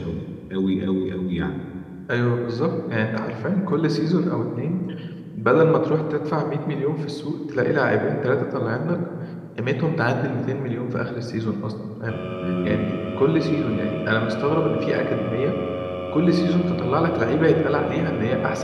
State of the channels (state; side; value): identical; both; correlation 1.00